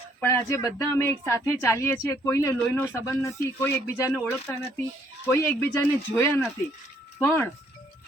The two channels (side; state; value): both; normal; correlation 0.66